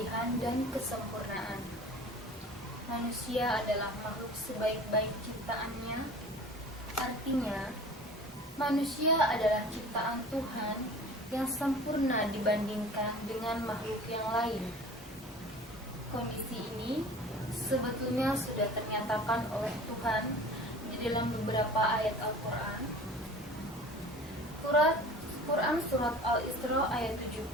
dan kesempurnaan. Manusia adalah makhluk sebaik-baik ciptaannya, artinya manusia adalah ciptaan Tuhan yang sempurna dibandingkan dengan makhluk yang lain. Kondisi ini sebetulnya sudah ternyatakan oleh Tuhan di dalam beberapa ayat Al-Quran. Quran Surat Al-Isra ayat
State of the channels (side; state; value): both; normal; correlation 0.42